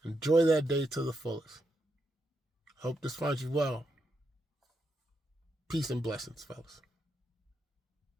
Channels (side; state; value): both; normal; correlation 0.83